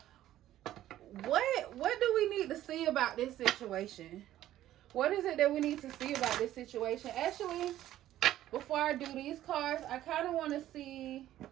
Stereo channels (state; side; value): quieter; left; 13.3 dB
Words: what do we need to see about this situation? What is it that we need to see about this situation? Actually, before I do these cards, I kind of want to see.